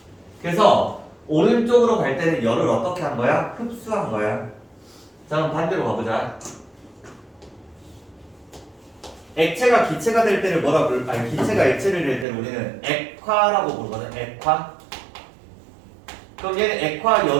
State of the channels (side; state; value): left; drops out; at 12.2 s